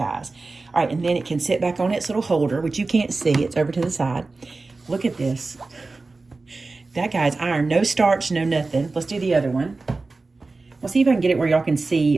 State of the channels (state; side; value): quieter; left; 3.6 dB